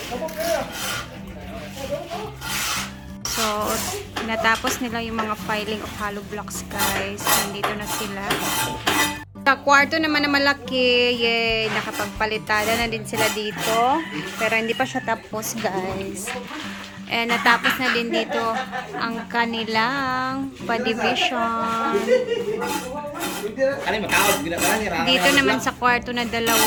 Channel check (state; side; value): identical; both; correlation 1.00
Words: So, natapos nila yung mga filing of hollow blocks, guys. Nandito na sila. Sa kwarto naman na malaki, yay, nakapagpalitada na din sila dito. Pero hindi pa siya tapos, guys. And natapos na din dito ang kanilang pa-division. Dito naman sa kwarto na